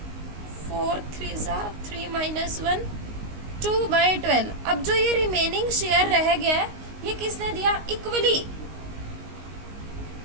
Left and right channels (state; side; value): late; left; 19 ms